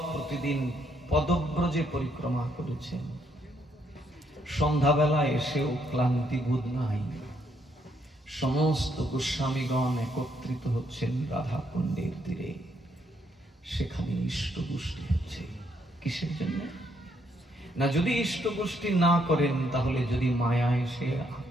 প্রতিদিন পদব্রজে পরিক্রমা করেছেন। সন্ধ্যাবেলা এসেও ক্লান্তি বোধ নাই। সমস্ত গোস্বামীগণ একত্রিত হচ্ছেন রাধা কুণ্ডের তীরে। সেখানে ইষ্টপুষ্টি হচ্ছে। কিসের জন্য? না, যদি ইষ্টপুষ্টি না করেন তাহলে যদি মায়া এসে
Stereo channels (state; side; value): normal; both; correlation 0.73